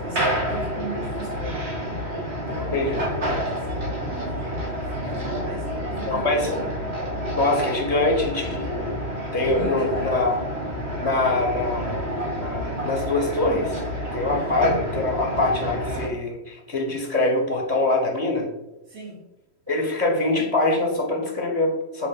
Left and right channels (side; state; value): left; late; 3.1 ms